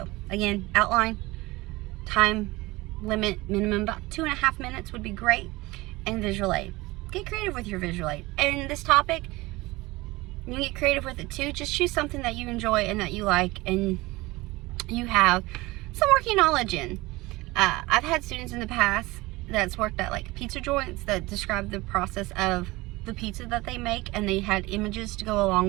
again, outline, time limit, minimum about 2.5 minutes would be great, and visual aid. Get creative with your visual aid. And this topic, you can get creative with it too. Just choose something that you enjoy and that you like, and you have some working knowledge in. I've had students in the past that's worked at like pizza joints that describe the process of the pizza that they make, and they had images to go along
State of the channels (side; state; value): left; quieter; 21.1 dB